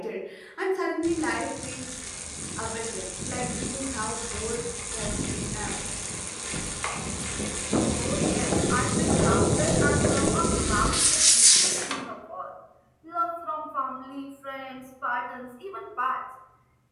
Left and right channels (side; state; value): both; identical; correlation 1.00